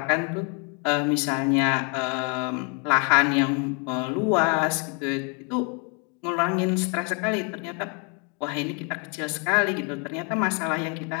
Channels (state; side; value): quieter; right; 36.2 dB